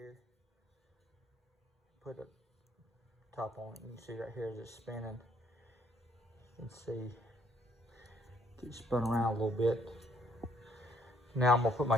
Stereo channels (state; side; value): normal; both; correlation 0.67